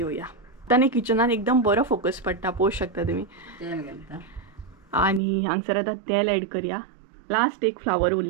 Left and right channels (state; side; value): drops out; left; at 5.2 s